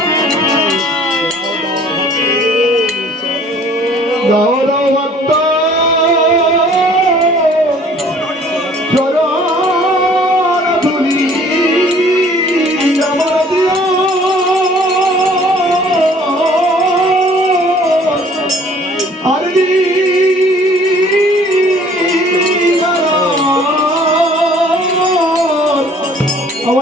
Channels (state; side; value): normal; both; correlation 0.54